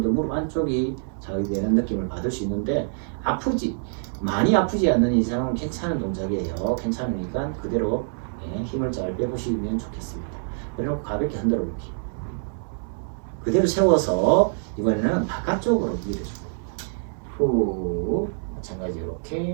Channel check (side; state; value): left; silent; 62 dB below the other